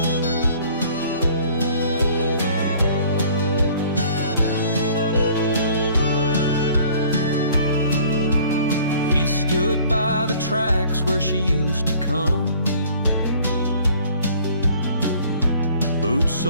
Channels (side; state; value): both; inverted; correlation -0.53